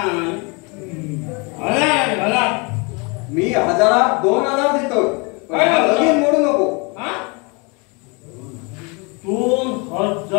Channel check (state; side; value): quieter; right; 30.7 dB